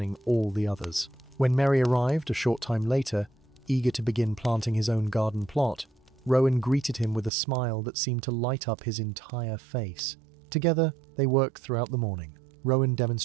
all the others. When Merry arrived a short time later, eager to begin planting his own garden plot, Rowan greeted him with a smile that seemed to light up his entire face. Together, they worked throughout the morning, Rowan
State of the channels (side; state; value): left; drops out; at 7.3 s